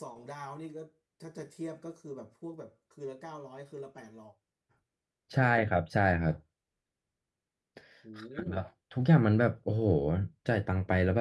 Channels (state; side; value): identical; both; correlation 1.00